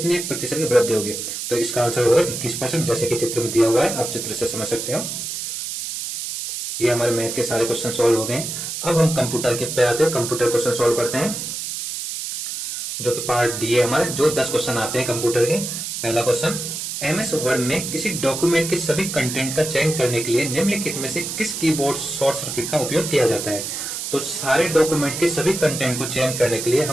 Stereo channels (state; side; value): noise; right; hiss, 5 dB below the sound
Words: प्रतिशत की वृद्धि होगी। तो इसका आंसर होगा 21%, जैसे कि चित्र में दिया हुआ है, आप चित्र से समझ सकते हो। ये हमारे मैथ के सारे क्वेश्चन सॉल्व हो गए। अब हम कंप्यूटर के पे आते हैं, कंप्यूटर क्वेश्चन सॉल्व करते हैं, जो कि पार्ट डी है हमारे, जो 10 क्वेश्चन आते हैं कंप्यूटर के। पहला क्वेश्चन, MS वर्ड में किसी डॉक्यूमेंट के सभी कंटेंट का चयन करने के लिए निम्नलिखित में से किस कीबोर्ड शॉर्ट सर्किट का उपयोग किया जाता है। तो सारे डॉक्यूमेंट के सभी कंटेंट को चयन करने के लिए